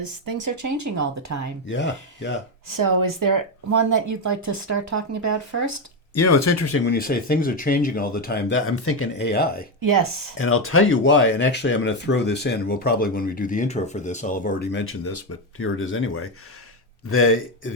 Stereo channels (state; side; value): normal; both; correlation 0.09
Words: things are changing all the time. Yeah. So is there one that you'd like to start talking about first? It's interesting when you say things are changing all the time. That I'm thinking AI. Yes. And I'll tell you why. And actually, I'm going to throw this in. We'll probably, when we do the intro for this, I'll have already mentioned this, but here it is anyway.